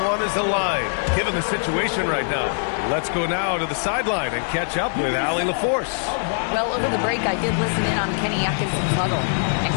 is aligned, given the situation right now. Let's go now to the sideline and catch up with Allie LaForce. Well, over the break, I did listen in on Kenny Atkinson's huddle, and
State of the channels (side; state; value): right; silent; digital silence